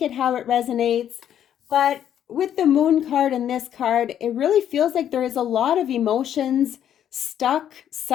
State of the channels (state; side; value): quieter; right; 10.0 dB